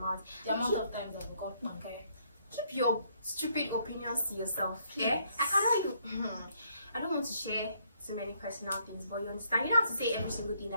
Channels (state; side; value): inverted; both; correlation -0.69